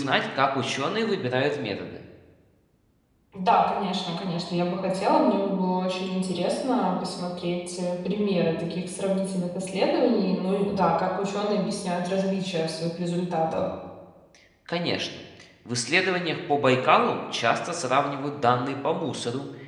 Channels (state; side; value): identical; both; correlation 1.00